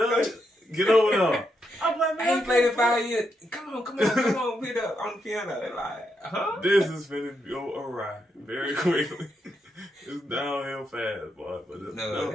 get over there. I'm like, man, I ain't played in 5 years. Come on, beat up on the piano. They're like, huh? This is finna go awry very quickly. It's downhill fast, boy. But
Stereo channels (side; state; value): both; normal; correlation 0.81